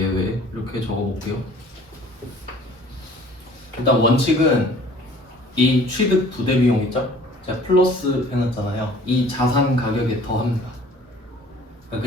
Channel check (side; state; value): both; normal; correlation 0.51